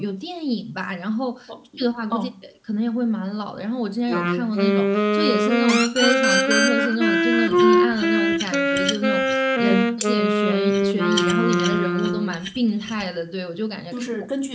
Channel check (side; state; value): both; identical; correlation 1.00